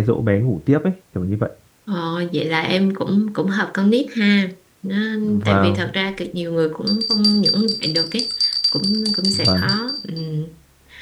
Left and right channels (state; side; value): identical; both; correlation 1.00